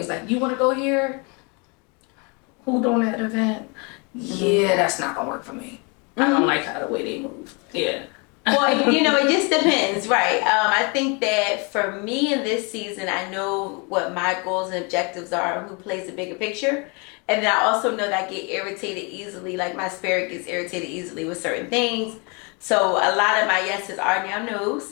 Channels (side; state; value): right; quieter; 32.0 dB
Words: like, you want to go here? Who doing that event? Yeah, that's not gonna work for me. I don't like how the way they move. Well, it just depends, right? I think that for me in this season, I know what my goals and objectives are, who plays the bigger picture. And then I also know that I get irritated easily, like my spirit gets irritated easily with certain things. So a lot of my yeses are now